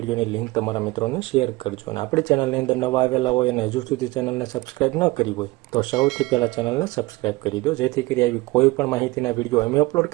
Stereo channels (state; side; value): quieter; left; 21.3 dB